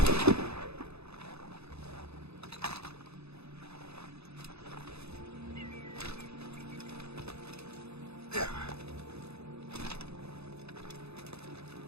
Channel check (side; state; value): left; late; 0.79 ms